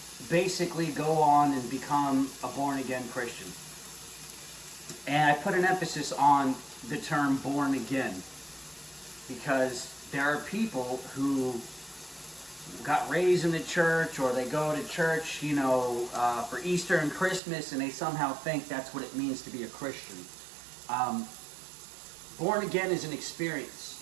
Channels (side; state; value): left; drops out; at 17.4 s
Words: basically go on and become a born-again Christian? And I put an emphasis on the term born again, because there are people who got raised in the church, or they go to church, you know, for Easter and Christmas, and they somehow think that's what it means to be a Christian. Born again is an experience.